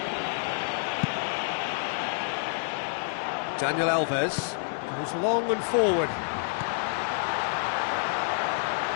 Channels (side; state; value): right; silent; digital silence